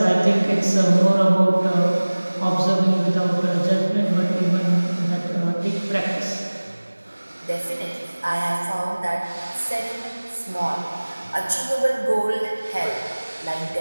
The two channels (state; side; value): inverted; both; correlation -1.00